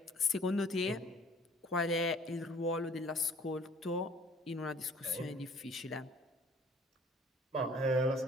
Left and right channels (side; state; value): both; normal; correlation 0.53